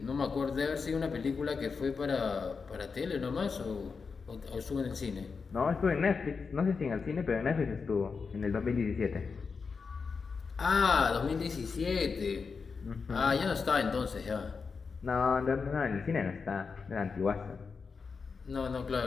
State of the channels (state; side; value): quieter; right; 5.1 dB